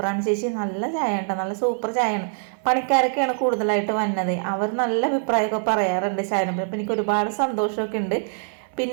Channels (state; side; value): silent; left; 58 dB below the other